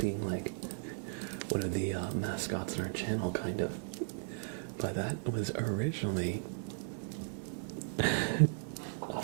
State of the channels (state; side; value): silent; left; digital silence